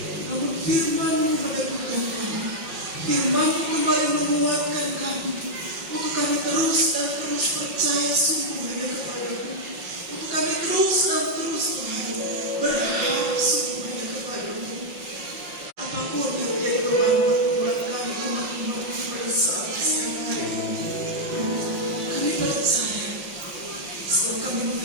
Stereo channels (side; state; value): left; late; 5.7 ms